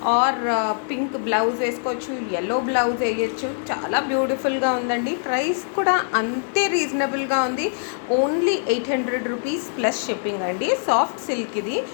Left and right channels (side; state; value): right; silent; digital silence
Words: ఆర్ పింక్ బ్లౌజ్ వేసుకోవచ్చు, ఎల్లో బ్లౌజ్ వేయచ్చు. చాలా బ్యూటిఫుల్గా ఉందండి. ప్రైస్ కూడా అంతే రీజనబుల్గా ఉంది. ఓన్లీ 800 రూపీస్ ప్లస్ షిప్పింగ్ అండి. సాఫ్ట్ సిల్క్ ఇది.